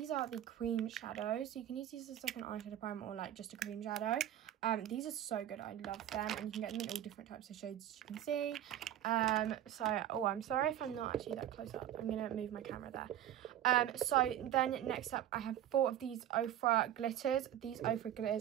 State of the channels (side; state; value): left; quieter; 11.7 dB